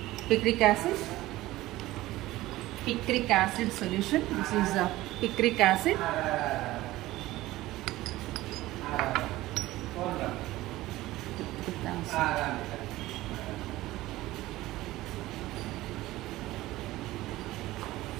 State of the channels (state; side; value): quieter; left; 17.2 dB